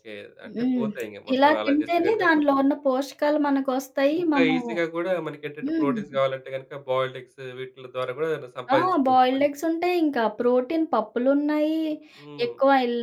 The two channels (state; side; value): identical; both; correlation 1.00